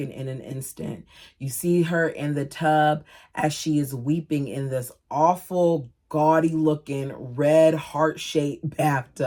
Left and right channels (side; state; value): both; identical; correlation 1.00